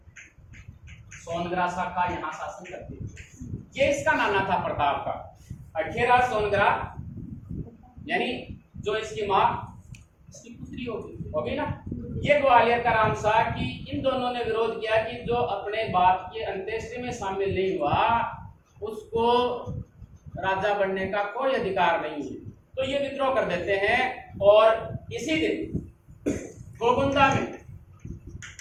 सोनगरा शाखा यहाँ शासन करती है, ये इसका नाना था प्रताप का। अखेराज सोनगरा यानी जो इसकी माँ इसकी पुत्री होगी ना, ये ग्वालियर का रामसा कि इन दोनों ने विरोध किया कि जो अपने बाप के अंत्येष्टि में शामिल नहीं हुआ उसको राजा बनने का कोई अधिकार नहीं है। तो ये विद्रोह कर देते हैं और इसी दिन गोकुंदा में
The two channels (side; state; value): both; identical; correlation 1.00